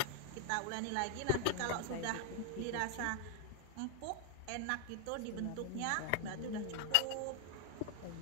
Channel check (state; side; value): different; both; correlation 0.00